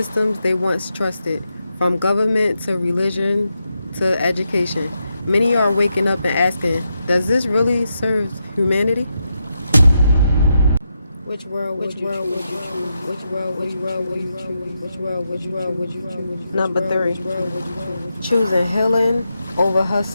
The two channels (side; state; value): both; inverted; correlation -0.85